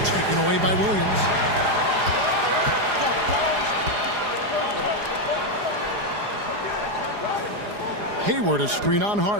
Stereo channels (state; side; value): late; left; 4.9 ms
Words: Taken away by Williams. Hayward a screen on